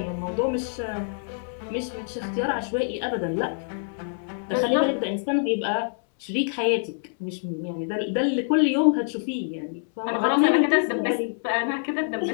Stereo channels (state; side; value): silent; right; digital silence